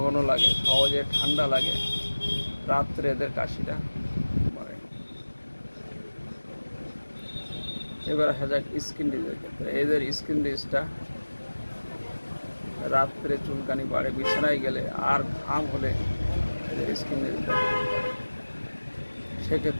ঘন লাগে, সহজে ঠান্ডা লাগে, রাত্রে এদের কাশিটা বাড়ে। এবার আসা যাক স্কিন ডিজিজের ক্ষেত্রে। এদের স্কিন ডিজিজটা রাত্রে চুলকানি বাড়ে, বিছানায় গেলে আর ঘাম হলে এদের স্কিন ডিজিজটা বাড়ে।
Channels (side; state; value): both; inverted; correlation -1.00